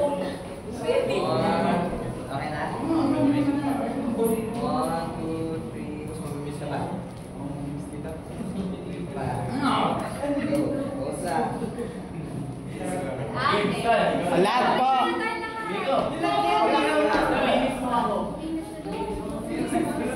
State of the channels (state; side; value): identical; both; correlation 1.00